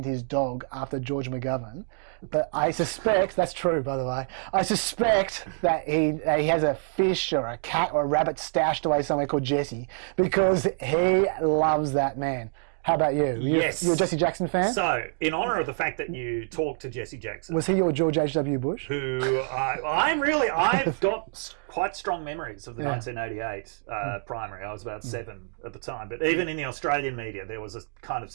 his dog after George McGovern, but I suspect that's true. By the way, I suspect that he has a fish or a cat or a rabbit stashed away somewhere called Jesse because he loves that man. How about you? Yes. You're a Jesse Jackson fan? So, in honour of the fact that you talked to Jesse Jackson... Was he your George H.W. Bush? I've got quite strong memories of the 1988 primary. I was about 7 at the time. But even in the Australian media, there was a kind of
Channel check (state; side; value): silent; left; digital silence